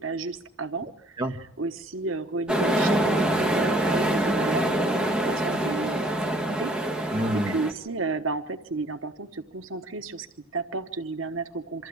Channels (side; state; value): both; normal; correlation 0.56